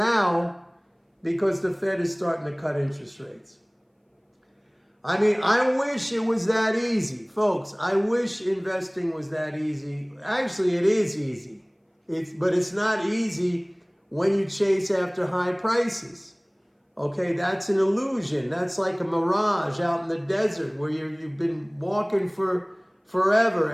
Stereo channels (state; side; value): identical; both; correlation 1.00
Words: because the Fed is starting to cut interest rates. I mean, I wish it was that easy, folks. I wish investing was that easy. Actually, it is easy. But it's not easy when you chase after high prices. Okay, that's an illusion. That's like a mirage out in the desert where you've been walking for forever